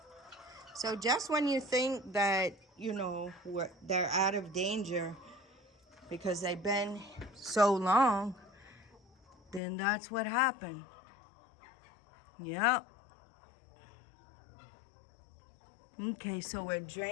So just when you think that, you know, they're out of danger because they've been so long, then that's what happened. Yep. Okay, so we're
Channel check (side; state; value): right; drops out; at 9.6 s